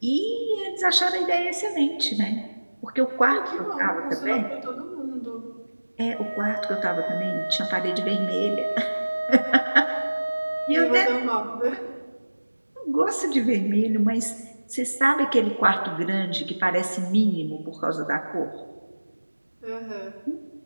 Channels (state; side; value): inverted; both; correlation -1.00